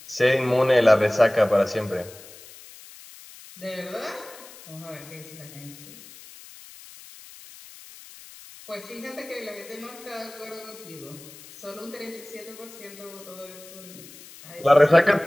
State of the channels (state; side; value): noise; left; hiss, 19 dB below the sound